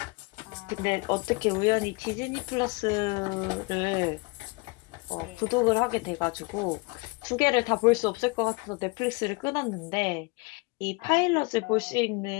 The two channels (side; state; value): right; quieter; 28.1 dB